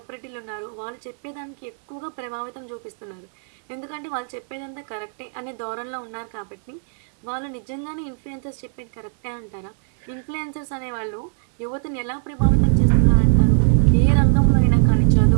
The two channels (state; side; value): silent; left; digital silence